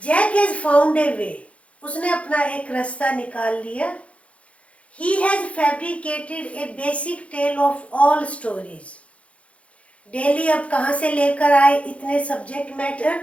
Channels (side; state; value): right; late; 0.063 ms